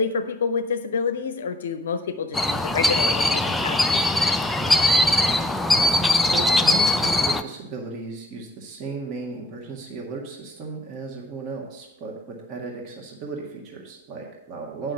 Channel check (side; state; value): both; normal; correlation 0.57